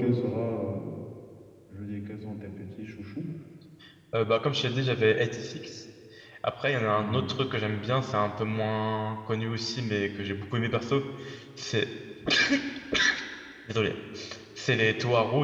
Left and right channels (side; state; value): both; identical; correlation 1.00